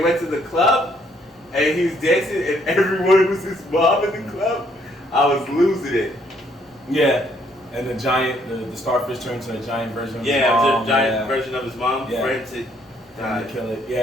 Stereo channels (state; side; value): normal; both; correlation 0.68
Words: to the club and he was dancing and everyone was his mom in the club. I was losing it. Yeah. And the giant, the starfish turned to a giant version of his Yeah, mom. the giant version of his mom Yeah. for him to Trying to kill it.